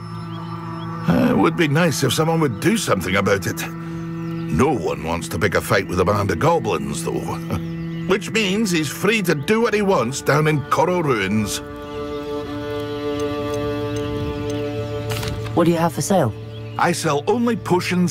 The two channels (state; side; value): identical; both; correlation 1.00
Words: It would be nice if someone would do something about it. No one wants to pick a fight with a band of goblins, though. Which means he's free to do what he wants down in Coral Ruins. What do you have for sale? I sell only